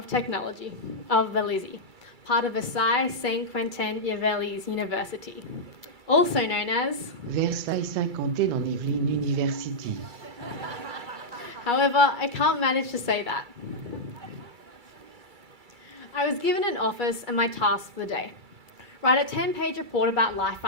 Technology of Vélizy, part of Versailles Saint-Quentin-Yvelines University, also known as Versailles Saint-Quentin-en-Yvelines University. However, I can't manage to say that. I was given an office and my task for the day: write a 10-page report about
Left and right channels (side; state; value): left; late; 2.3 ms